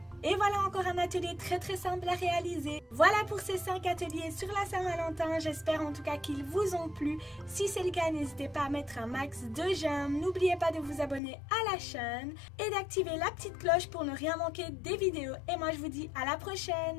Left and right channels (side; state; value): right; drops out; at 11.2 s